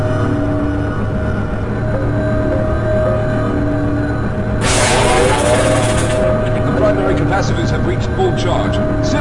The primary capacitors have reached full charge.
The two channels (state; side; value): identical; both; correlation 1.00